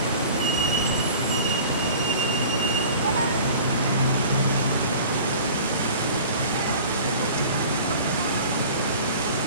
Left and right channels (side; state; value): both; inverted; correlation -0.43